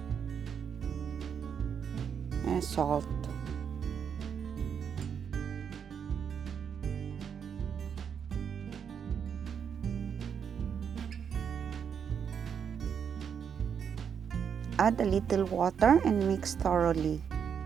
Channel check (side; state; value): left; quieter; 7.4 dB